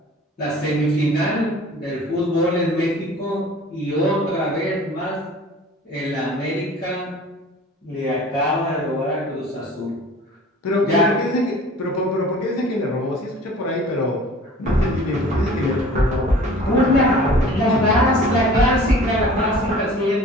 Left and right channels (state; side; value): normal; both; correlation 0.46